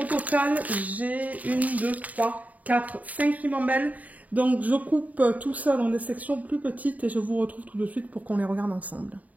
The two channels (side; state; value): left; late; 0.073 ms